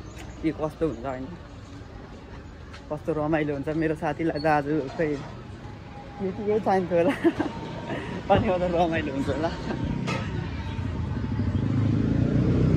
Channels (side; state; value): both; identical; correlation 1.00